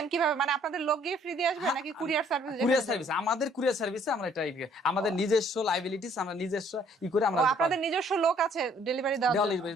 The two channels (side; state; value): both; normal; correlation 0.61